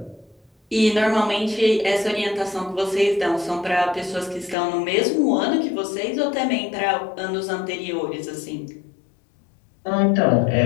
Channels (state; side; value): drops out; right; at 4.5 s